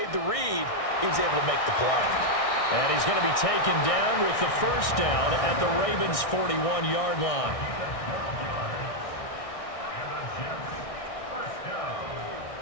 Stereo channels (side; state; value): right; late; 1.6 ms